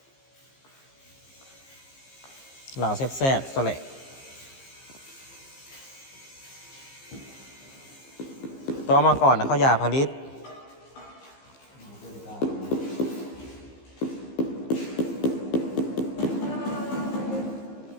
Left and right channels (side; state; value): right; late; 15 ms